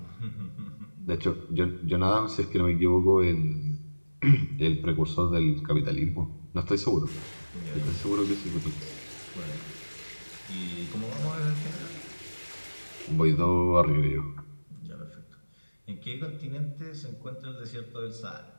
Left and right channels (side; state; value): both; inverted; correlation -1.00